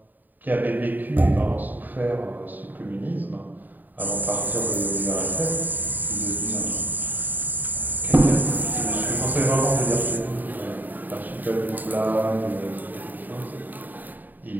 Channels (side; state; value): left; late; 0.087 ms